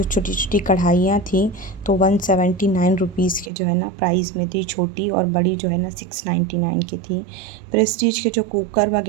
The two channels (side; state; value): left; drops out; at 3.5 s